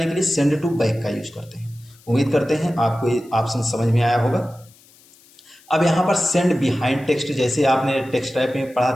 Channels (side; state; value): left; noise; hiss, 28 dB below the sound